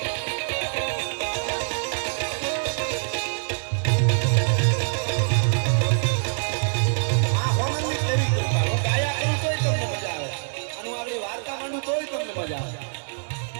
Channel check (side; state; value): left; silent; digital silence